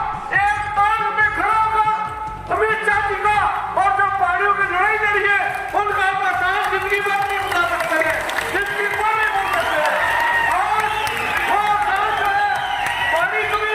एक ताल में खड़ा होगा अमित शाह जी का, और जो पहाड़ियों की लड़ाई लड़ी है उनका आपका काम जिंदगी भर नहीं बता सकते हैं, जिंदगी भर नहीं बोल सकते हैं। और वो काम जो है पहाड़ी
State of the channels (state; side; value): identical; both; correlation 1.00